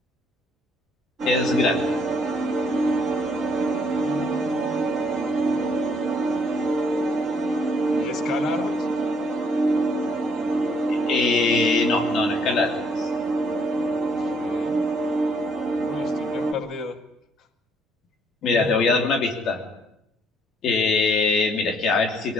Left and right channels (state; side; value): normal; both; correlation 0.67